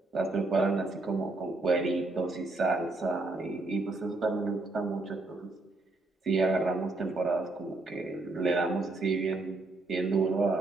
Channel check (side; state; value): left; quieter; 3.1 dB